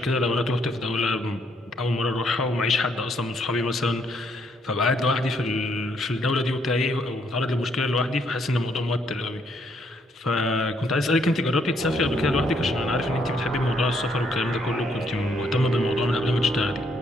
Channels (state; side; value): normal; both; correlation 0.71